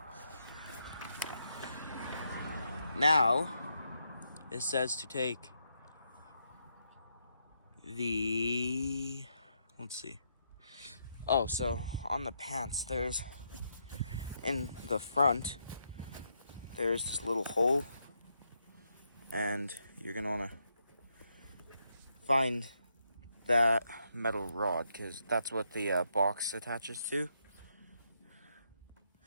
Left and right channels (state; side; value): inverted; both; correlation -0.79